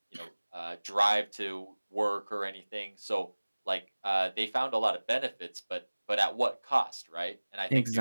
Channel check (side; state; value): both; inverted; correlation -1.00